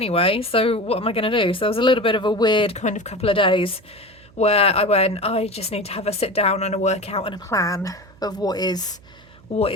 so what am I going to do? So there was a little bit of a weird kind of couple of days where I just need to have a sit down and a workout and a plan of what is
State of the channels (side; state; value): right; noise; hum, 26 dB below the sound